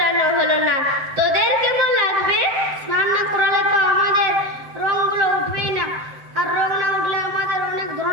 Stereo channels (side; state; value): left; late; 7.8 ms